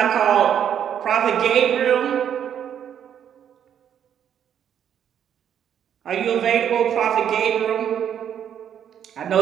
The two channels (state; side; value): quieter; left; 9.2 dB